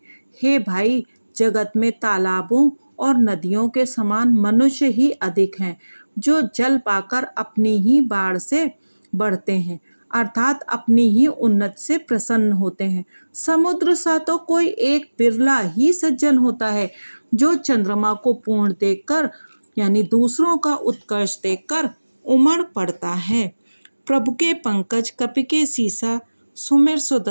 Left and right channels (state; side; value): inverted; both; correlation -1.00